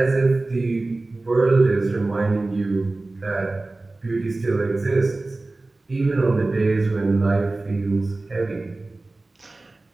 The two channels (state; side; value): quieter; left; 3.1 dB